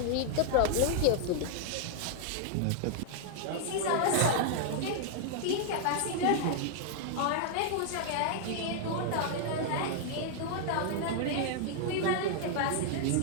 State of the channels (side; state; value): both; different; correlation 0.00